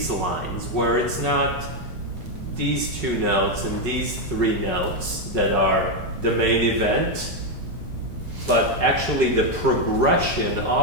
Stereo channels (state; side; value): late; left; 5.5 ms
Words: lines, where it's not these two notes and these three notes that are the main event, but actually the progression